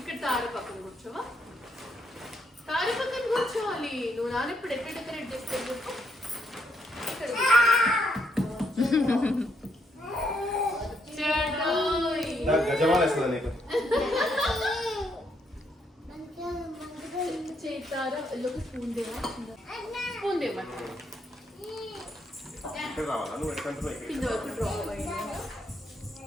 తార పక్కన కూర్చోవా? తార పక్కన కూర్చోవాలి. నువ్వు నాన్న ఇప్పుడు ఎక్కడ డెకరేట్ చేస్తావు చెప్పు. ఇక్కడ చేతారా లోకి స్పూన్ దేవా? స్పూన్ దేవా కింద వరకు డ్రాప్ అయ్యింది.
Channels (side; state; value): both; normal; correlation 0.76